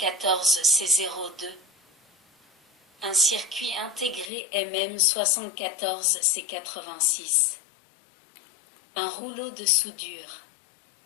Un circuit intégré MM74C86. Un rouleau de soudure.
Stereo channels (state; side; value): drops out; right; at 4.3 s